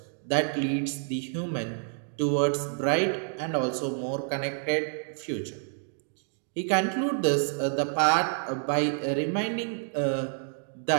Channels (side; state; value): left; silent; digital silence